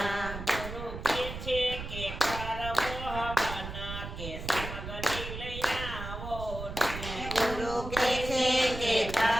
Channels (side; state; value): right; noise; rumble, 8 dB below the sound